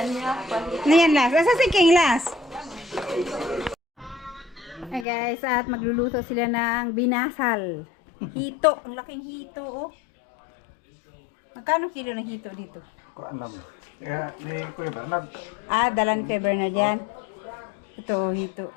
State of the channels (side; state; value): right; drops out; at 5.1 s